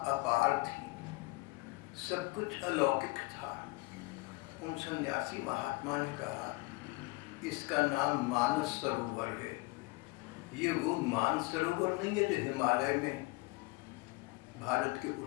थी, सब कुछ अलौकिक था। उन सन्यासी महात्मा ने कहा इसका नाम मानस सरोवर है। ये वो मानस सरोवर नहीं है जो हिमालय में भारत के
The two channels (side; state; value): right; quieter; 23.8 dB